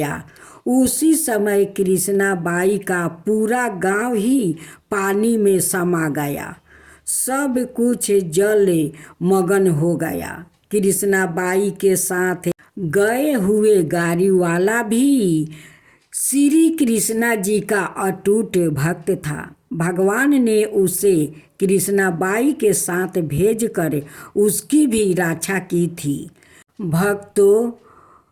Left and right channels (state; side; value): identical; both; correlation 1.00